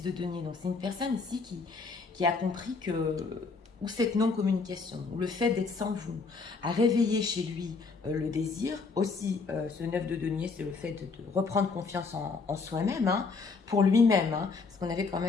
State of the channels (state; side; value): quieter; right; 4.5 dB